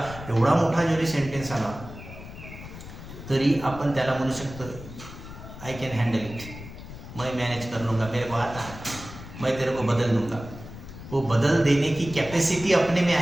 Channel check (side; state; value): left; noise; rumble, 13 dB below the sound